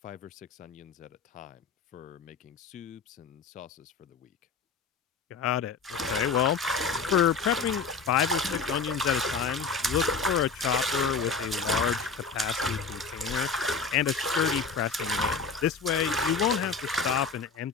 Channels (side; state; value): right; quieter; 5.0 dB